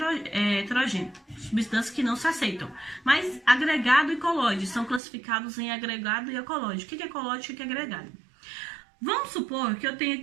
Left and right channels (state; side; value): drops out; left; at 5.0 s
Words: heterogêneo? Substâncias que não se aceitam. Mas agregado e colóide são classificados em agregado e colóide. O que é colóide e o que é agregado? Vamos supor que eu tenho